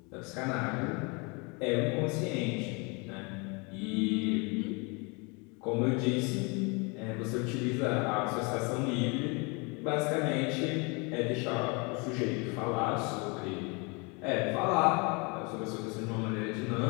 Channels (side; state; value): right; quieter; 30.5 dB